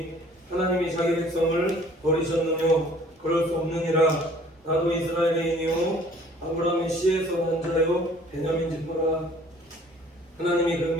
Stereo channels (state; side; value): normal; both; correlation 0.54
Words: 하나님이 자기 백성을 버리셨느뇨? 그럴 수 없느니라. 나도 이스라엘인이요 아브라함의 씨에서 난 자요 베냐민 지파라. 하나님이 그